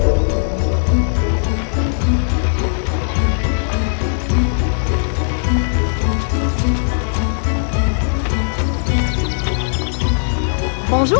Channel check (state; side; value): silent; right; 65 dB below the other